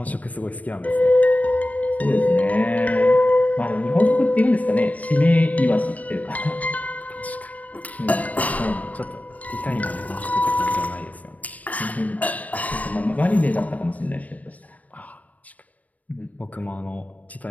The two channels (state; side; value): late; right; 0.070 ms